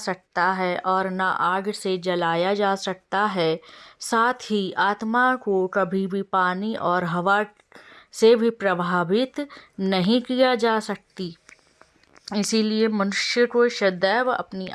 है और ना आग से जलाया जा सकता है। साथ ही आत्मा को कभी भी पानी और हवा से भी प्रभावित नहीं किया जा सकती। इसीलिए मनुष्य को सदैव अपनी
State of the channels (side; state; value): both; identical; correlation 1.00